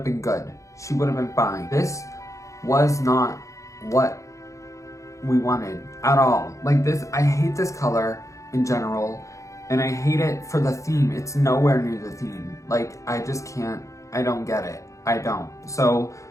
been good. She would have been fine. This was not what we wanted at all. Like this, I hate this color in general, and I hate it for the theme. It's nowhere near the theme. Like, I just can't, I don't get it. I don't. So,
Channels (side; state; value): right; late; 0.15 ms